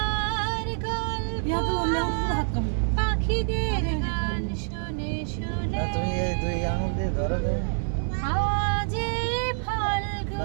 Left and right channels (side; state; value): left; silent; digital silence